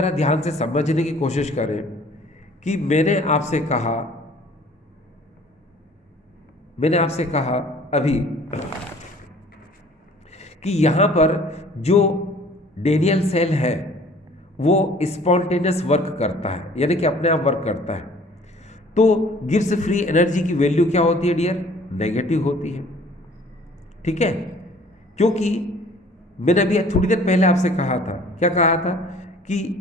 ध्यान से समझने की कोशिश करें कि मैंने आपसे कहा अभी कि यहाँ पर जो डेनियल सेल है वो स्पॉन्टेनियस वर्क करता है, यानी कि अपने आप वर्क करता है। तो गिब्स फ्री एनर्जी की वैल्यू क्या होती है डियर? नेगेटिव होती है। ठीक है, क्योंकि मैंने अभी थोड़ी देर पहले आपसे कहा था, क्या कहा था?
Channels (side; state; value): both; normal; correlation 0.52